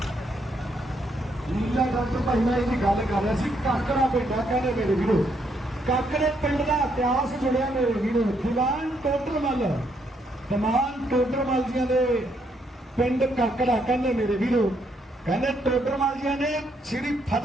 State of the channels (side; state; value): both; normal; correlation 0.74